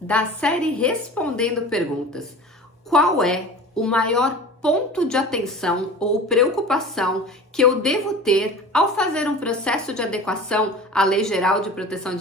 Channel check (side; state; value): both; normal; correlation 0.38